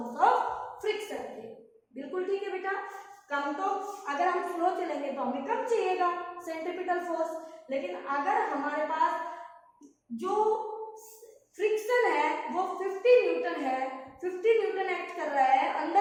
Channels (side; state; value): both; identical; correlation 1.00